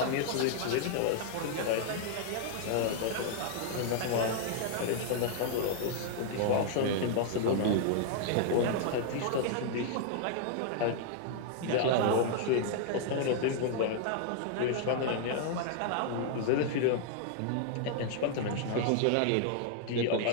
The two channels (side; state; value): both; different; correlation -0.01